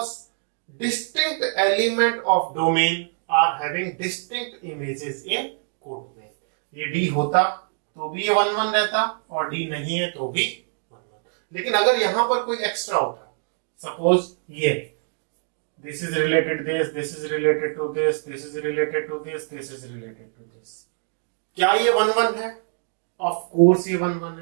distinct element of domain are having distinct images in codomain. ये D होता तो भी ये 1-1 रहता, और D नहीं है तो भी 1-1. लेकिन अगर यहां पर कोई एक्स्ट्रा होता, सपोज ये this is related this is related to this is related to this is related to this, क्या ये 1-1 है? ऑफ कोर्स ये 1-1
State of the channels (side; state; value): left; silent; 62 dB below the other